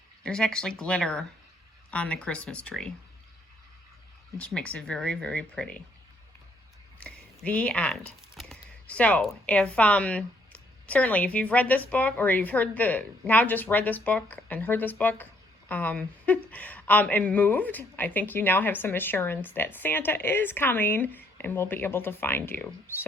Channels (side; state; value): both; normal; correlation 0.68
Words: there's actually glitter on the Christmas tree, which makes it very, very pretty. The end. So if certainly if you've read this book, or you've just read this book and heard this book and moved, I think you now have some assurance that Santa is coming and will be able to find you.